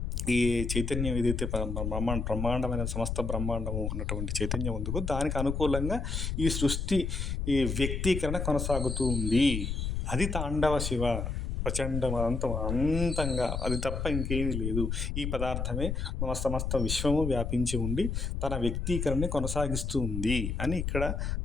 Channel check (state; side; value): noise; left; rumble, 2 dB below the sound